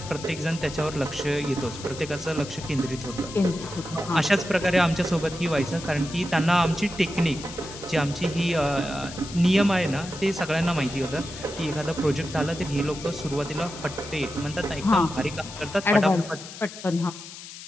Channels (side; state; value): left; noise; hiss, 13 dB below the sound